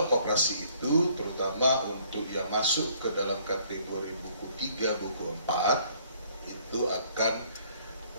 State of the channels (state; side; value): inverted; both; correlation -0.62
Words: koperasi itu terutama untuk yang masuk ke dalam kategori buku 3, buku 4 itu akan